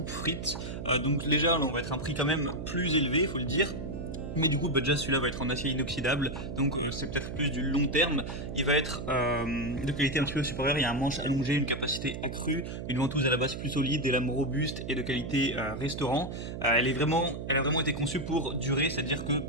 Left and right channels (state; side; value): noise; right; hum, 7 dB below the sound